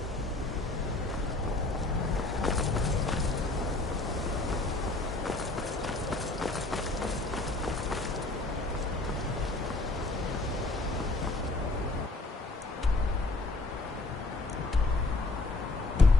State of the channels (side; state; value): right; quieter; 3.0 dB